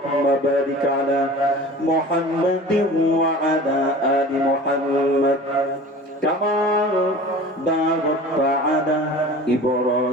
بارك على محمد وعلى آل محمد كما باركت على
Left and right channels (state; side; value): normal; both; correlation 0.40